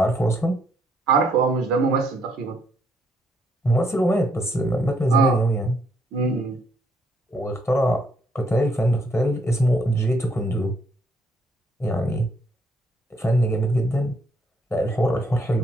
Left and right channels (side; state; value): both; normal; correlation 0.71